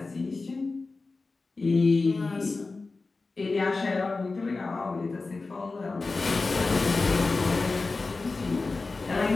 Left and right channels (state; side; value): quieter; right; 3.7 dB